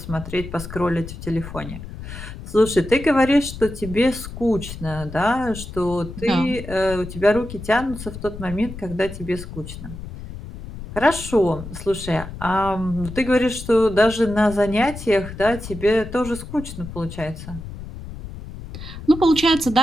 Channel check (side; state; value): left; noise; rumble, 11 dB below the sound